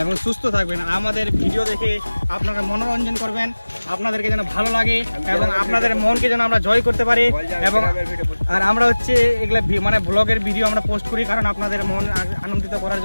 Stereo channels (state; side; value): inverted; both; correlation -1.00